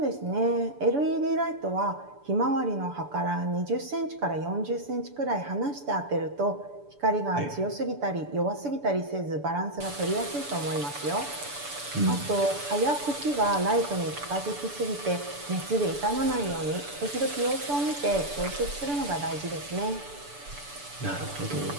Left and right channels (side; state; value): left; late; 6.9 ms